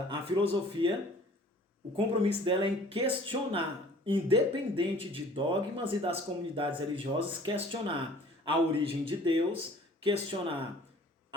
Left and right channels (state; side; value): normal; both; correlation 0.51